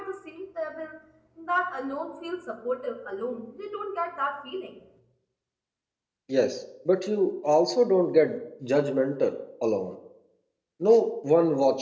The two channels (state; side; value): identical; both; correlation 1.00